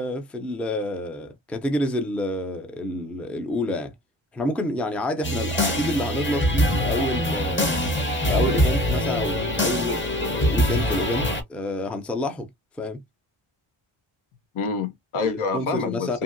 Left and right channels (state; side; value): normal; both; correlation 0.45